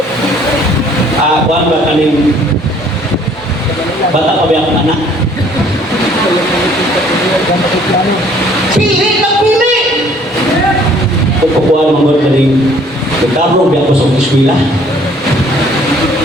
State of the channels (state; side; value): normal; both; correlation 0.58